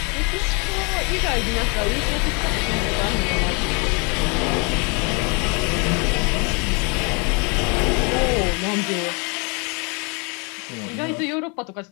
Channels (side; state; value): right; quieter; 32.9 dB